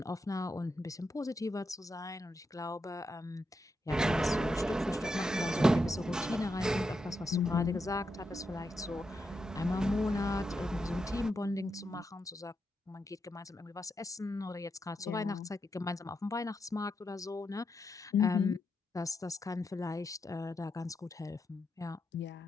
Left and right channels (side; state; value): both; normal; correlation 0.84